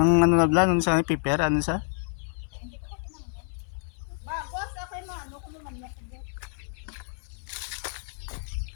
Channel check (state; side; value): silent; right; 59 dB below the other